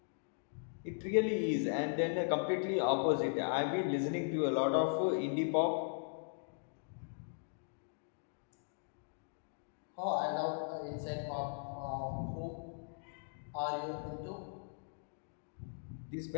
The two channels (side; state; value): right; silent; digital silence